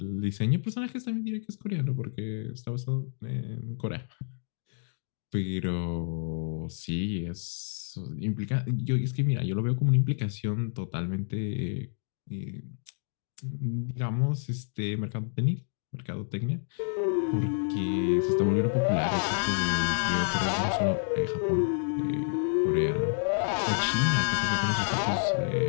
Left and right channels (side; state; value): right; silent; digital silence